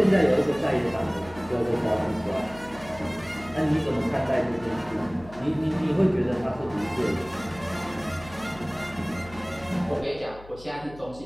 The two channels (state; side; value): noise; left; hum, 19 dB below the sound